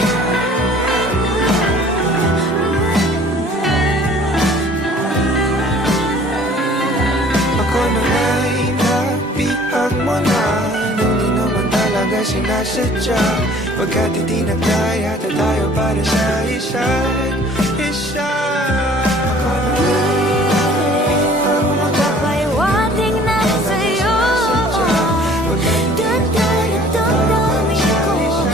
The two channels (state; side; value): normal; both; correlation 0.52